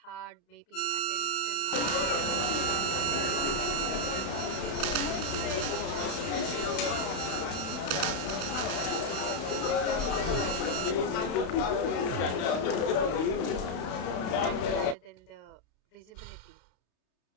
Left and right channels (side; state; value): right; late; 32 ms